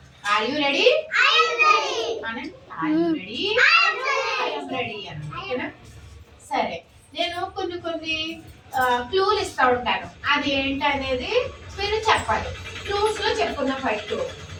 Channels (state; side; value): identical; both; correlation 1.00